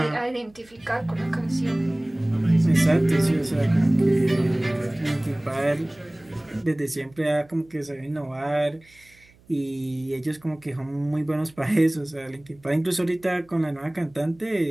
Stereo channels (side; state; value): right; noise; hum, 29 dB below the sound